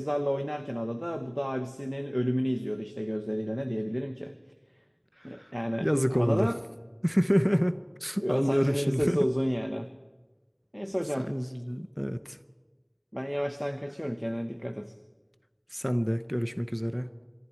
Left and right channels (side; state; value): both; identical; correlation 1.00